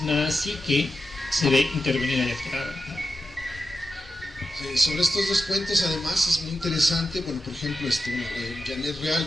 psique se ve intervenida y alterada, ¿no? Sobre estos dos cuentos, además, es muy interesante. Bueno, por ejemplo, Janet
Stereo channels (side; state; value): both; normal; correlation 0.90